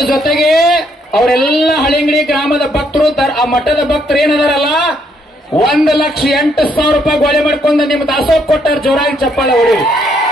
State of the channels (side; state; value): both; normal; correlation 0.72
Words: ಜೊತೆಗೆ ಅವರೆಲ್ಲ ಹಳಿಂಗಡಿ ಗ್ರಾಮದ ಭಕ್ತರು, ಆ ಮಠದ ಭಕ್ತರು ಏನದಾರಲ್ಲ 1,08,000 ರೂಪಾಯಿ ಗೋಳೆ ಮಾಡ್ಕೊಂಡು ನಿಮ್ಮ ದಾಸೋಹ ಕೊಟ್ಟಾರ. ಜೋರಾಗಿ ಚಪ್ಪಾಳೆ ಹೊಡಿ.